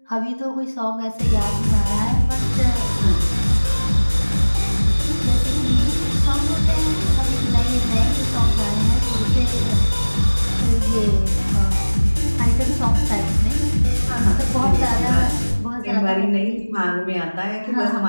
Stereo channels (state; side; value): inverted; both; correlation -1.00